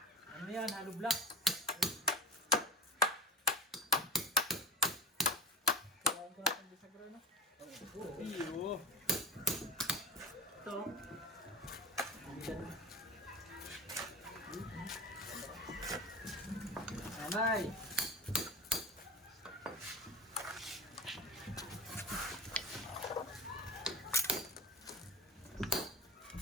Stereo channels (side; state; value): both; normal; correlation 0.32